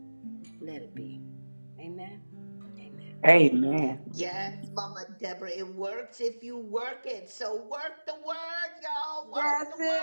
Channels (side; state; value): both; inverted; correlation -1.00